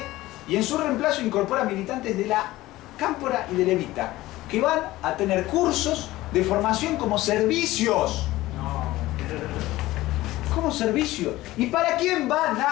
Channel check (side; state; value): right; quieter; 17.3 dB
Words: y en su reemplazo incorpora militantes de la Cámpora y del Evita, que van a tener cursos de formación como servicios. Como servicio. ¿Y para quién van